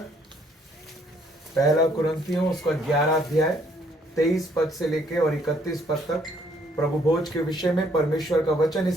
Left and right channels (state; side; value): normal; both; correlation 0.66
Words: पहला कुरिन्थियों उसका 11 अध्याय 23 पद से लेके और 31 पद तक प्रभु भोज के विषय में परमेश्वर का वचन